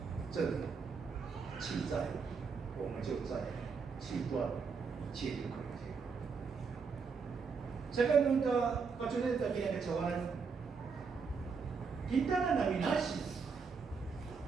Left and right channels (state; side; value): quieter; left; 5.3 dB